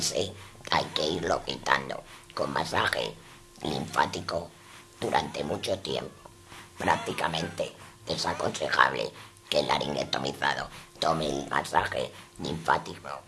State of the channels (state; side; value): identical; both; correlation 1.00